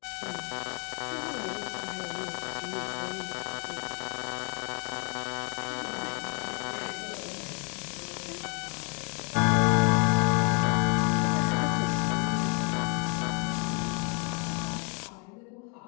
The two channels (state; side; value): quieter; right; 35.5 dB